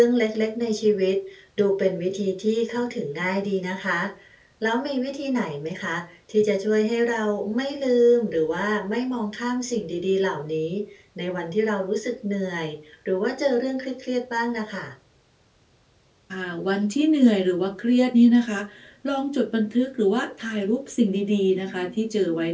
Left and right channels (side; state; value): both; identical; correlation 1.00